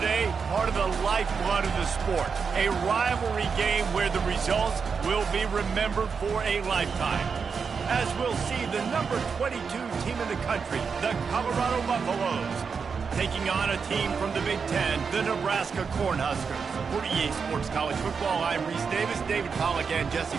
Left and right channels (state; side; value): quieter; left; 5.7 dB